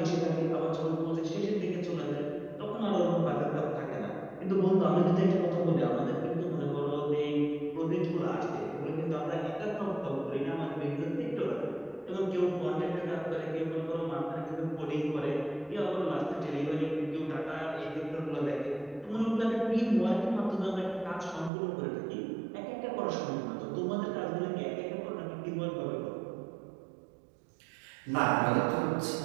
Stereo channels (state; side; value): drops out; left; at 21.5 s